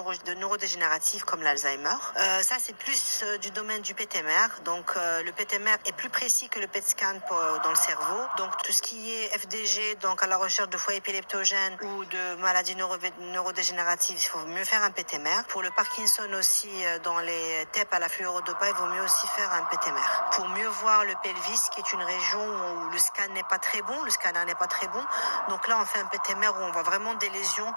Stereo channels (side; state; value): both; inverted; correlation -1.00